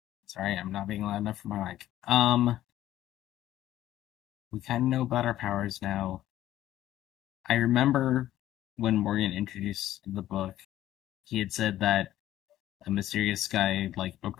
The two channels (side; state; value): right; quieter; 13.4 dB